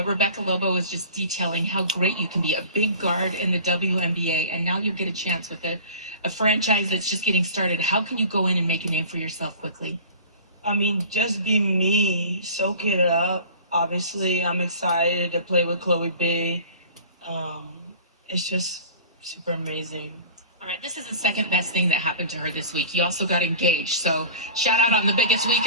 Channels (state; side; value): inverted; both; correlation -0.41